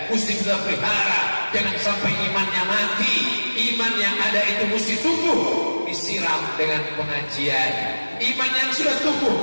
mesti kita pelihara. Jangan sampai imannya mati. Iman yang ada itu mesti tumbuh, disiram dengan pengajian. Iman yang sudah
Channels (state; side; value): inverted; both; correlation -1.00